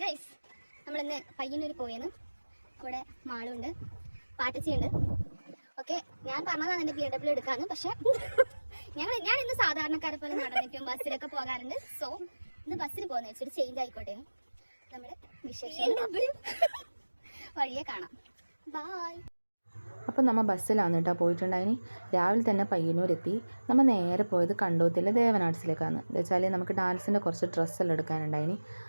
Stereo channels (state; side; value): inverted; both; correlation -1.00